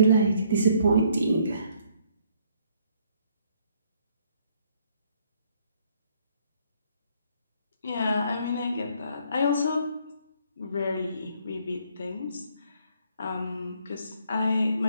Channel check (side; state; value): both; inverted; correlation -0.65